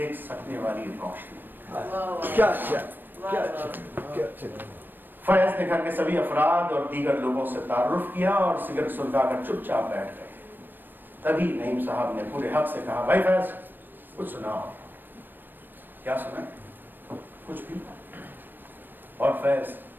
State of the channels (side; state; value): left; late; 0.093 ms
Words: सकने वाली रोशनी। क्या फैज़ ने घर के सभी अफराद और दीगर लोगों से तारुफ किया और सिगरेट सुलगाकर चुपचाप बैठ गए। तभी नईम साहब ने पूरे हक से कहा, भाई फैज़, कुछ सुनाओ। क्या सुना? कुछ भी। और फैज़